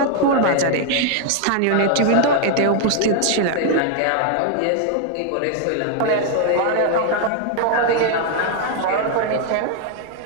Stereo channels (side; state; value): both; different; correlation 0.00